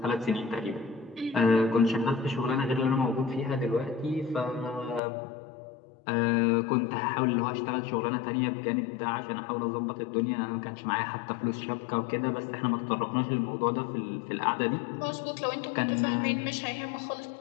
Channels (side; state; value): right; drops out; at 5.0 s